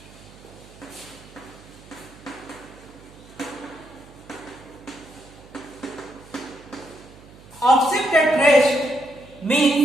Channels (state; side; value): noise; right; hum, 22 dB below the sound